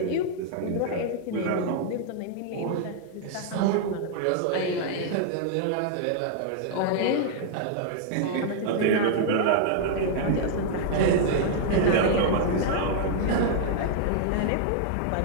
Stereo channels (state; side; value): different; both; correlation -0.01